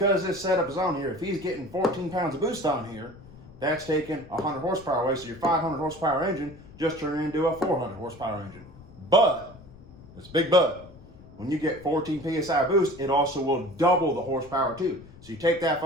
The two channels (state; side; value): noise; left; rumble, 20 dB below the sound